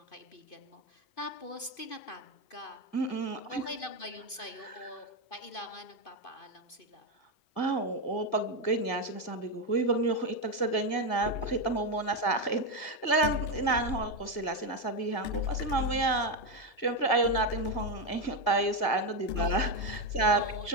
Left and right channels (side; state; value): right; late; 2.5 ms